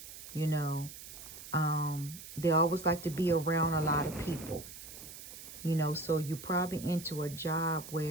You know, they always like to be around a lot of people. You know, so you're probably into a job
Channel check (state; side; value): noise; right; hiss, 13 dB below the sound